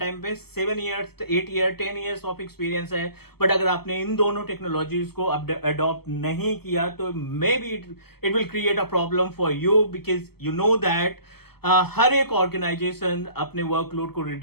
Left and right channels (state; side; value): late; right; 0.96 ms